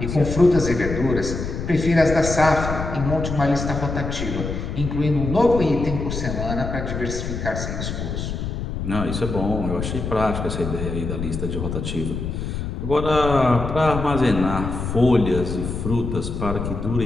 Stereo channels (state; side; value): noise; left; rumble, 4 dB below the sound